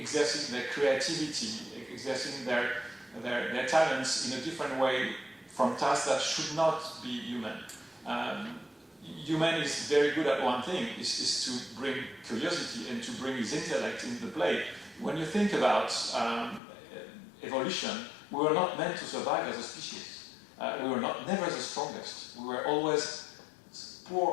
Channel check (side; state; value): right; drops out; at 16.6 s